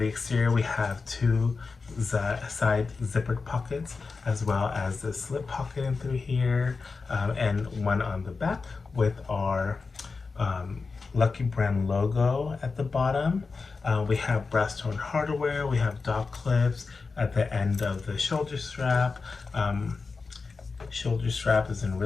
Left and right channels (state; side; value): quieter; right; 4.4 dB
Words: exterior, we have 2 side zippered pockets, as well as the slip pocket in through here, and one on the back with our Lucky brand logo at the bottom. We have brass tone hardware. We have dot clips at the end of the shoulder strap. Shoulder strap is in